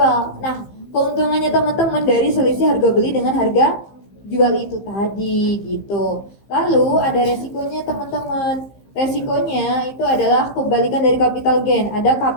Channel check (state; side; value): late; right; 15 ms